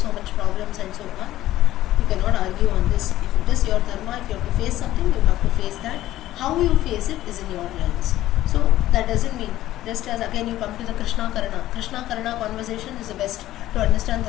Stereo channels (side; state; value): right; quieter; 14.5 dB